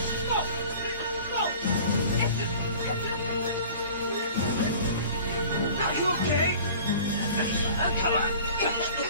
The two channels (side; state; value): both; inverted; correlation -0.44